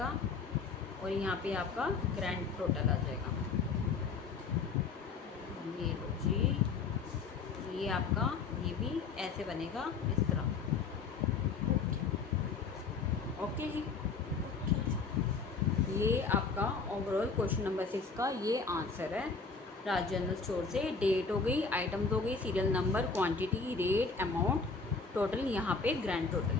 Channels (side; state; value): right; quieter; 4.8 dB